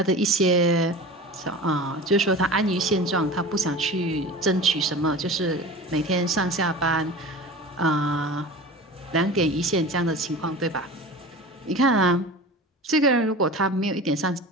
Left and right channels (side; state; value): both; normal; correlation 0.35